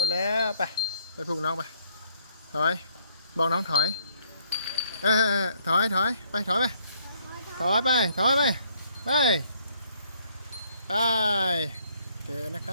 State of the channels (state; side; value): inverted; both; correlation -0.64